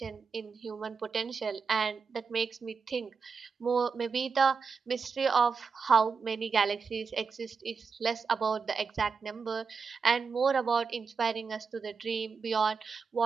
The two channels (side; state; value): left; quieter; 5.3 dB